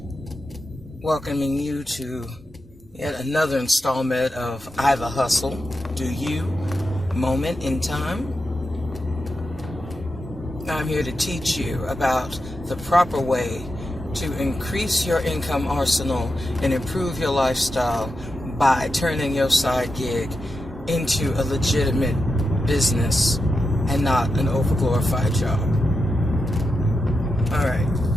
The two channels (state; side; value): normal; both; correlation 0.88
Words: welcoming you to yet another installment of IVA Hustle, Do You, Moment in Time. I'm here to teach you about the proper way to increase your income arsenal and improve your lifestyle by turning your side gig into a legitimate business and not an overglorified job. All right.